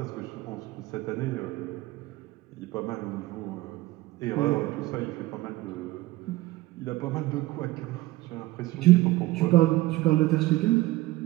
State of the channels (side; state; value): left; quieter; 18.1 dB